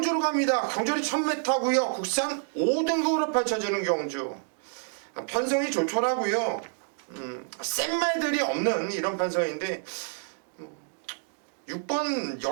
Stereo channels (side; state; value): left; silent; 56 dB below the other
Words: 갑니다. 경주는 1000m고요. 국산 5등급으로 펼쳐지는 경주. 편성이 좋더라고요. 센 말들이 없는 이런 편성인데 6번